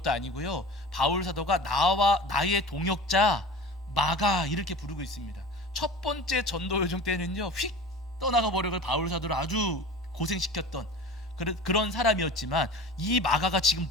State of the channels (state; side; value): normal; both; correlation 0.36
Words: 아니고요. 바울 사도가 나의 동역자 마가 이렇게 부르고 있습니다. 첫 번째 전도 여정 때는요, 휙 떠나가 버려서 바울 사도를 아주 고생시켰던 그런 사람이었지만, 이 마가가 지금